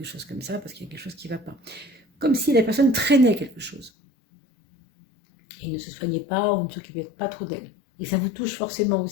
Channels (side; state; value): right; drops out; at 3.9 s